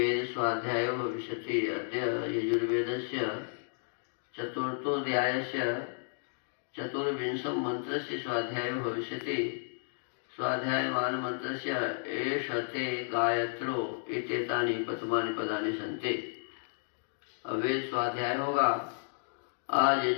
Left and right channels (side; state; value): right; silent; digital silence